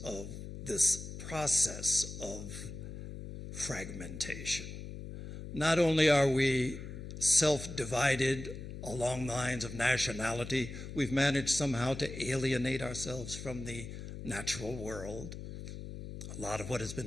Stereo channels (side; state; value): left; noise; hum, 9 dB below the sound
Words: of this process of fragmentation. Not only are we self-divided along lines of nationality, we've managed somehow to alienate ourselves from the natural world. A lot of what has